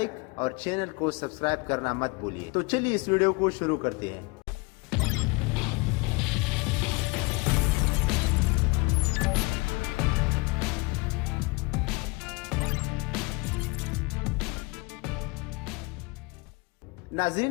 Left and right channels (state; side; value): quieter; right; 27.0 dB